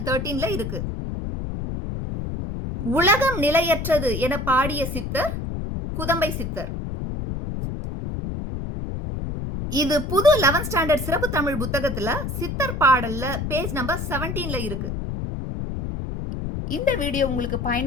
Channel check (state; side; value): noise; left; rumble, 4 dB below the sound